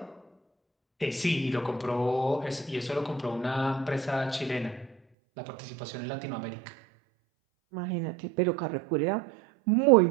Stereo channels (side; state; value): left; drops out; at 5.0 s